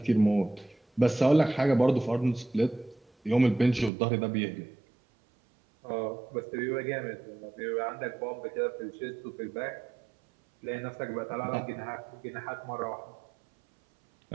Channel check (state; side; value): drops out; left; at 3.9 s